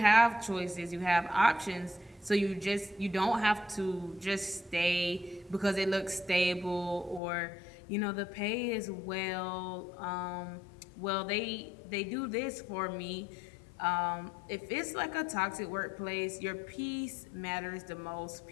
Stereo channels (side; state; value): right; drops out; at 7.2 s